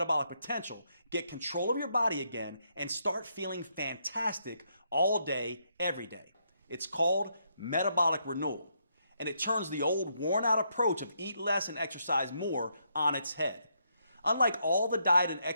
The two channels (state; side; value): inverted; both; correlation -0.77